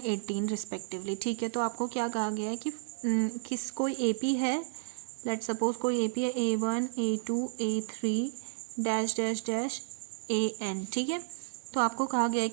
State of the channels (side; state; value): left; silent; digital silence